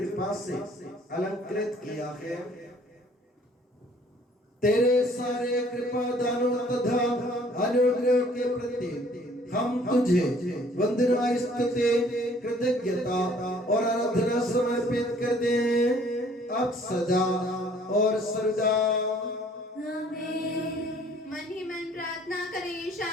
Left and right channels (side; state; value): both; normal; correlation 0.57